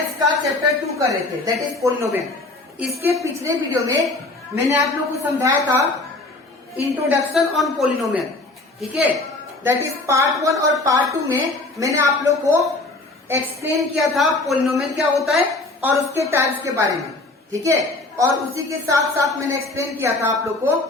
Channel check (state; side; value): quieter; right; 3.0 dB